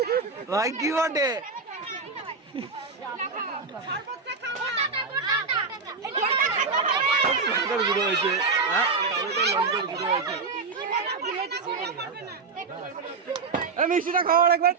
ভাই কি বটে লঙ্কার গুঁড়ো হয়েছে লঙ্কার গুঁড়ো হয়েছে মিষ্টিটা খাও আরেকবার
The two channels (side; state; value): left; quieter; 4.5 dB